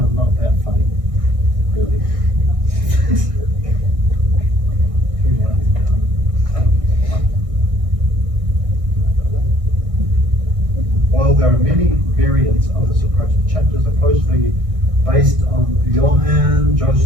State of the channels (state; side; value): late; left; 1.6 ms